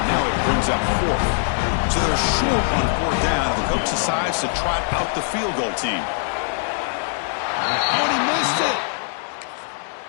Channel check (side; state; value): right; silent; 60 dB below the other